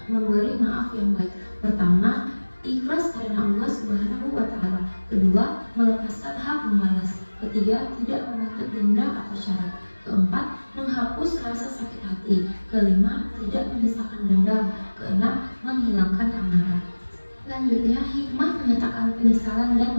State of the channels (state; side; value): inverted; both; correlation -1.00